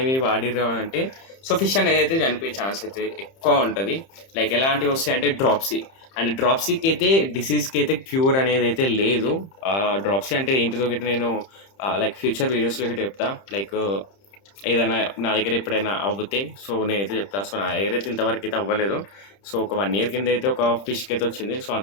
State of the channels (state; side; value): late; right; 30 ms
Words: వాడిర్రు అంటే సో ఫిష్ అనేది అయితే చనిపోయే ఛాన్స్ అయితే ఎక్కువ ఉంటుంది. లైక్ ఎలాంటివి వస్తాయి అంటే డ్రాప్సీ. అండ్ డ్రాప్సీకి అయితే డిసీజ్కి అయితే క్యూర్ అనేది అయితే లేదు. డ్రాప్సీ అంటే ఏంటిదో గిట్ట నేను లైక్ ఫ్యూచర్ వీడియోస్లో గిట్ట చెప్తా. లైక్ ఏదైనా నా దగ్గర ఎప్పుడైనా అవ్వుతే సో నేనైతే చెప్తా. సో నా దగ్గర అయితే ఇంతవరకు అయితే అవ్వలేదు. సో ఒక 1 year కింద అయితే ఒక ఫిష్కి అయితే వచ్చింది. సో